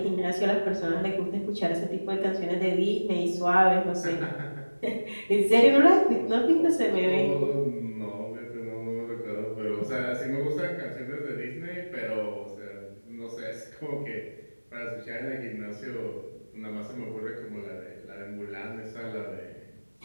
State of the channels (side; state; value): both; inverted; correlation -1.00